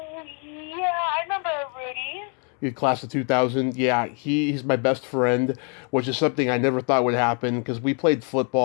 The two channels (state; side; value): quieter; right; 38.7 dB